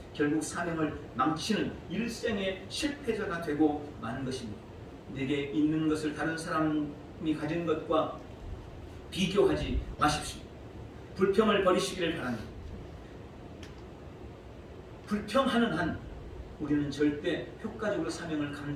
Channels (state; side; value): identical; both; correlation 1.00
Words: 결국 사명을 망치는 일생의 실패자가 되고 마는 것입니다. 내게 있는 것을 다른 사람이 가진 것과 비교하지 마십시오. 불평을 버리시기를 바랍니다. 불평하는 한 우리는 절대 효과적으로 사명을